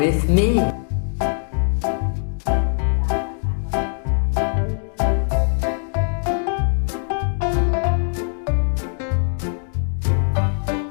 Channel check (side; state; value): right; silent; 65 dB below the other